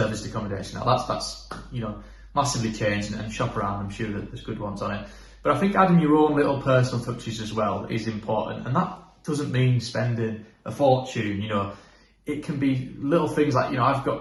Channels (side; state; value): both; identical; correlation 1.00